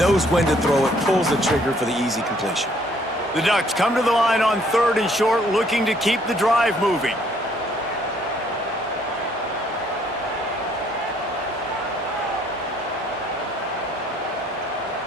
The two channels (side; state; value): right; noise; hum, 30 dB below the sound